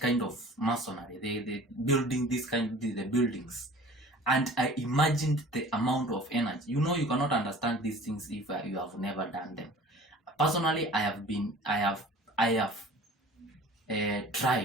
of masonry. They building the buildings, and I imagined the amount of energy. You know, you cannot understand these things if you have never done them. Personally, I have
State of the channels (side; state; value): both; normal; correlation 0.45